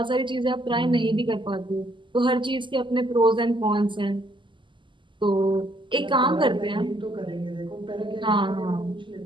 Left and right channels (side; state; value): left; late; 0.24 ms